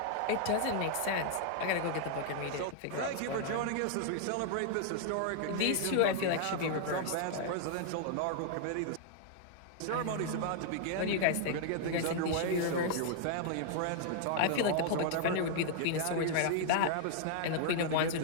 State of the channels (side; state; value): both; different; correlation -0.01